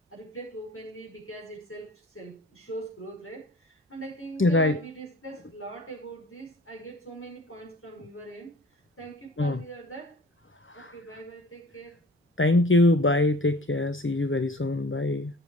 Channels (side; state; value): both; normal; correlation 0.46